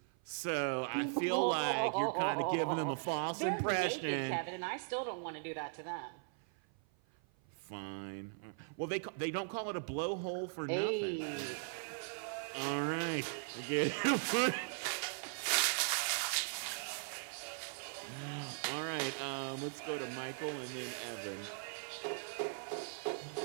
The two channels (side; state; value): left; silent; 52 dB below the other